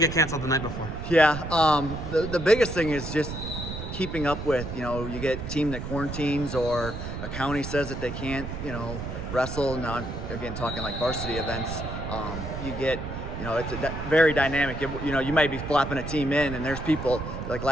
canceled the night before? Yeah, the biggest thing is just keeping up with, you get a team that quarantines or a county says that they can't, wrestle. Now I'm, again, talking like varsity events. You get, it's very dynamic. You might be flopping a team in and there's people, like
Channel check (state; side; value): noise; right; rumble, 7 dB below the sound